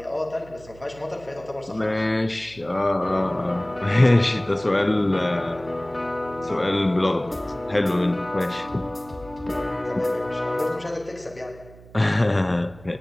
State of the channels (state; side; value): noise; right; hum, 21 dB below the sound